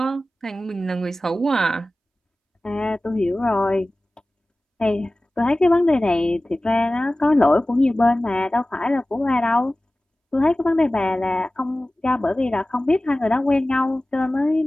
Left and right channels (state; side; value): normal; both; correlation 0.97